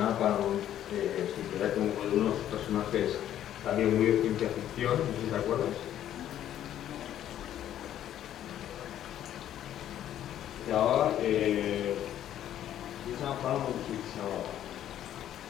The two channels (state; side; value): quieter; right; 11.4 dB